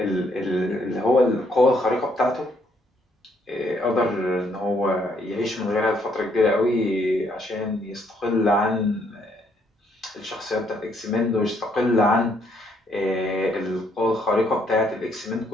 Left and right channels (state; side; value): normal; both; correlation 0.70